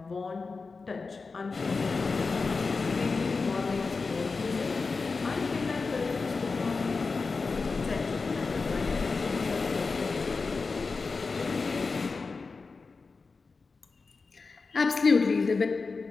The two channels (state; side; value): quieter; right; 4.3 dB